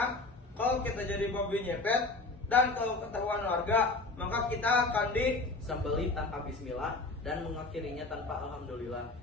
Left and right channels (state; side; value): quieter; right; 3.4 dB